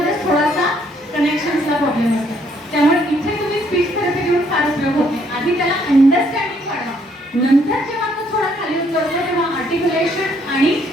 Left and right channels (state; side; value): normal; both; correlation 0.68